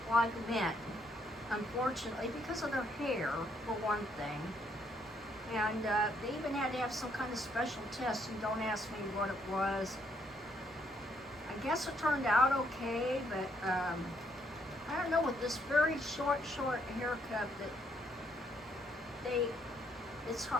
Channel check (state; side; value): normal; both; correlation 0.71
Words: like men. Unfortunately, because of their hair, for one thing. And they even had to have some kind of special test, and don't ask me what it was. I guess it turned out okay, but I don't know, with this very short haircut it's